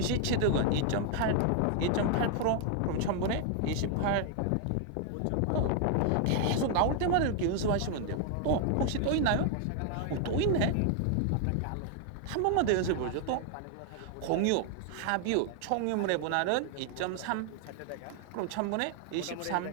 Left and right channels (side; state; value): both; different; correlation 0.00